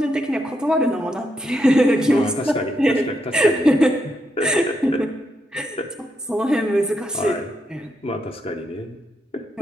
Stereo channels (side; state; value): both; normal; correlation 0.80